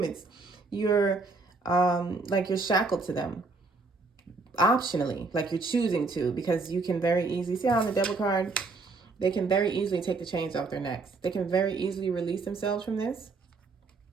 You're you're shackled to them optionally, like you're choosing to, because you can very easily see how on the Devil card, they can very easily take the chains off their necks. They can very easily release themselves from this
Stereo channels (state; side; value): quieter; left; 3.8 dB